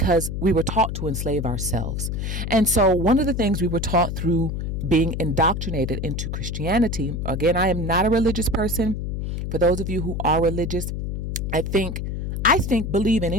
we were taught to enslave ourselves. And so one of the things we were taught through being indoctrinated into Christianity, again, I am not a religious person. For those of you who are religious, I think believe in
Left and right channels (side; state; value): left; noise; hum, 3 dB below the sound